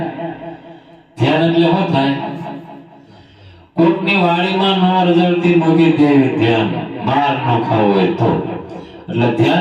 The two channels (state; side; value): identical; both; correlation 1.00